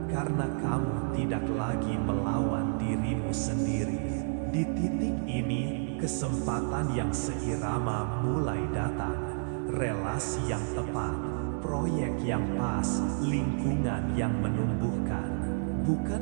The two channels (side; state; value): left; silent; 58 dB below the other